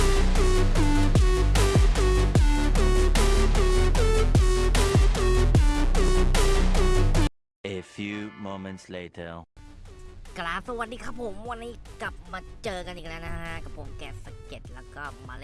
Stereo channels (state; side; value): identical; both; correlation 1.00